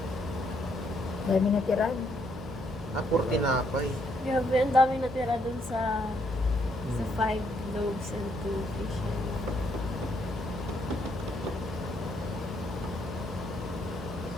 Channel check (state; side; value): normal; both; correlation 0.72